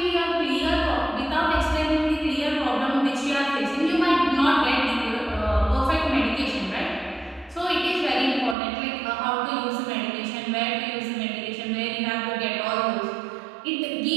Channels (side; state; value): left; drops out; at 8.6 s